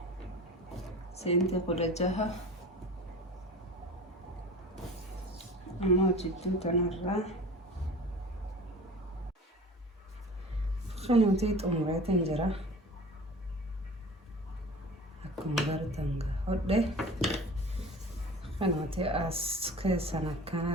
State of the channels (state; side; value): normal; both; correlation 0.39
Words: سنتي قلجها أما جدو تنرى قنوتي أموري تنجرى أكما قرتن قهده قنوتي أسكي سنة